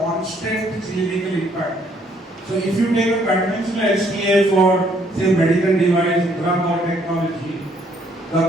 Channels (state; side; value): normal; both; correlation 0.66